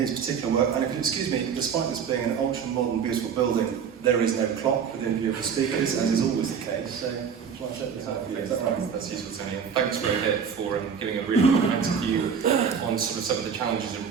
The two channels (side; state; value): left; quieter; 6.9 dB